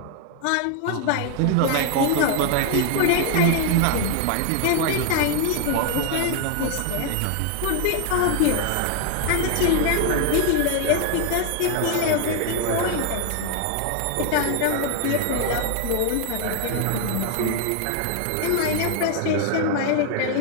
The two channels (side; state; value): both; different; correlation 0.00